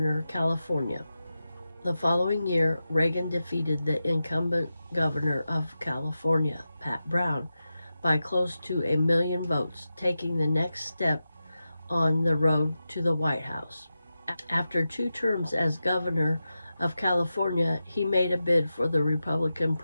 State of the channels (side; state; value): both; inverted; correlation -0.92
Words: of California. The following year, Reagan defeated the incumbent governor of California, Pat Brown, by close to 1 million votes, taking the next step on the road to the White House. After 2 terms as governor of California, he made a bid for the Republican